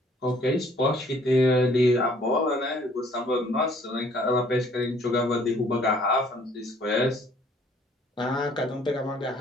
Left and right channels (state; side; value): normal; both; correlation 0.59